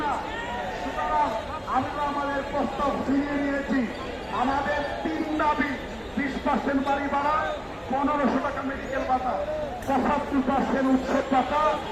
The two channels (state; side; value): identical; both; correlation 1.00